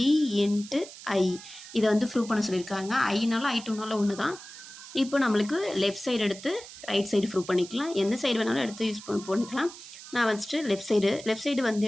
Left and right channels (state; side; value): noise; right; hiss, 15 dB below the sound